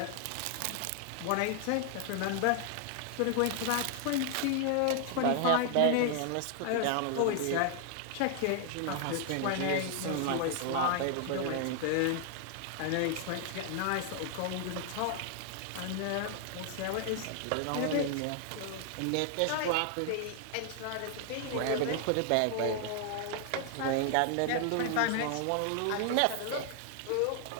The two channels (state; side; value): different; both; correlation 0.00